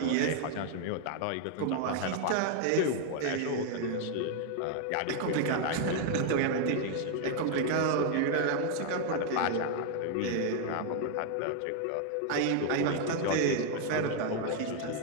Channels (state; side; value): different; both; correlation 0.00